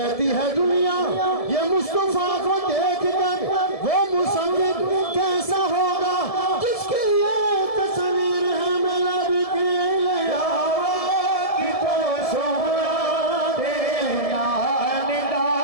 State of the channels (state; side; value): late; right; 1.7 ms